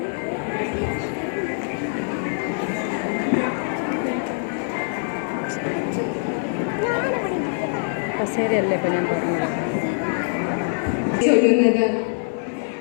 കസേരയല്ലേ ഇപ്പം ഞാൻ പറഞ്ഞത്.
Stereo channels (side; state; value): right; silent; 63 dB below the other